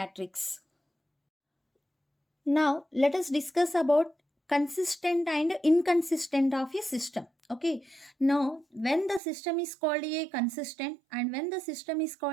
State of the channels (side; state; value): left; drops out; at 9.2 s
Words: Now let us discuss about consistent and inconsistent of a system. Okay, now when the system is called a consistent and when the system is